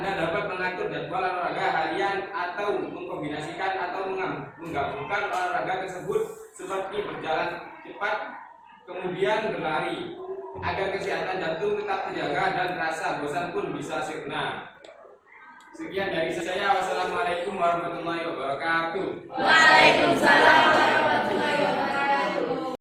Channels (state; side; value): identical; both; correlation 1.00